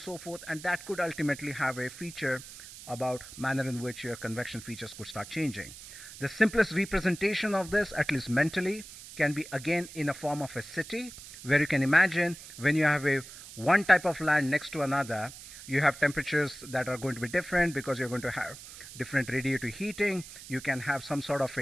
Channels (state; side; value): noise; right; hiss, 15 dB below the sound